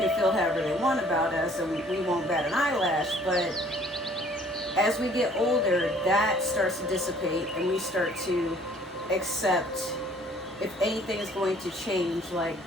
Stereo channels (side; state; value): both; normal; correlation 0.56